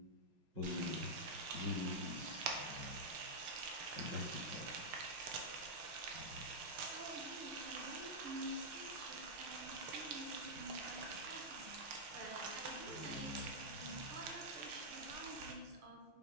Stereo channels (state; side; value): late; left; 6.5 ms